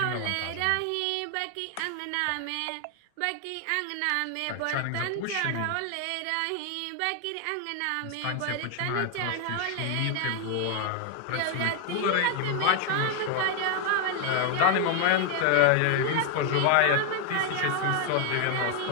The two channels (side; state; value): both; different; correlation 0.00